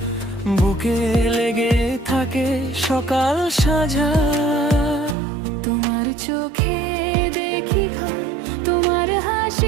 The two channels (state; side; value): drops out; left; at 5.2 s